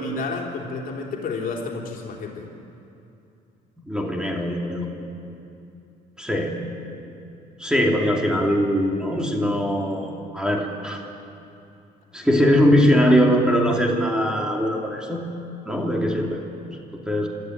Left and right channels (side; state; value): both; normal; correlation 0.75